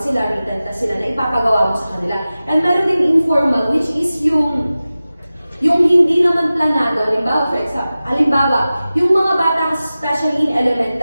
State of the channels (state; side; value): inverted; both; correlation -0.96